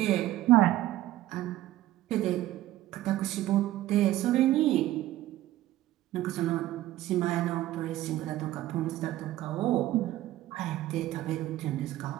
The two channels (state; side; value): quieter; left; 15.0 dB